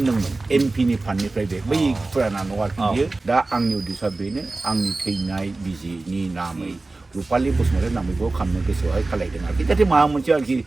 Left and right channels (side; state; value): left; quieter; 3.3 dB